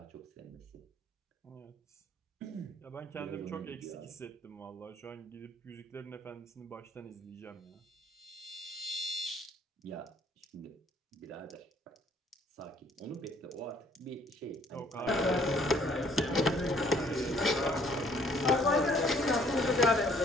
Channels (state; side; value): normal; both; correlation 0.61